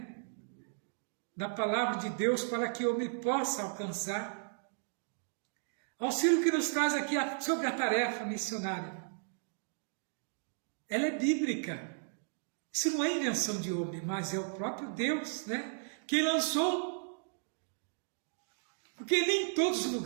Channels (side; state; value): left; silent; digital silence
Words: da palavra de Deus para que o homem possa alcançar auxílio que nos traz aqui sobre a tarefa missionária. Ela é bíblica. Isso não é invenção de homem, mas é o próprio Deus, né, que lançou. Porque nem em todos os